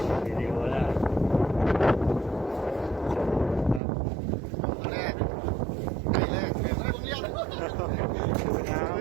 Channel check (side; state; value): left; drops out; at 3.8 s